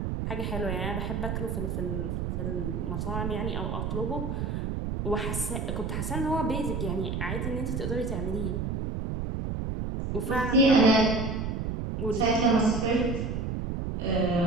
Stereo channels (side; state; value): right; noise; rumble, 2 dB below the sound